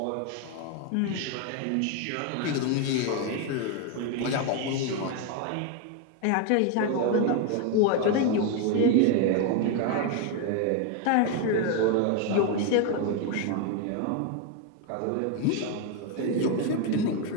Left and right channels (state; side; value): different; both; correlation 0.01